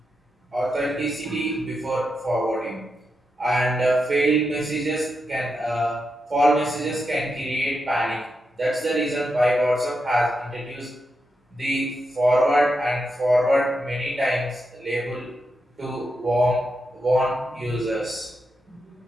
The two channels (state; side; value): normal; both; correlation 0.86